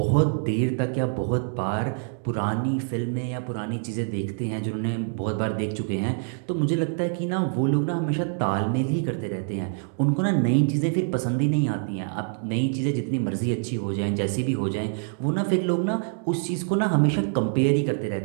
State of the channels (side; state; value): left; silent; 61 dB below the other